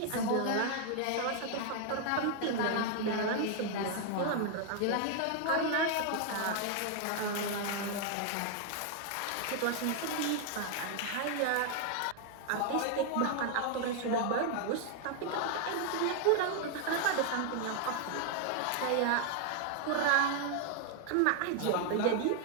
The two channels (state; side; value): different; both; correlation 0.00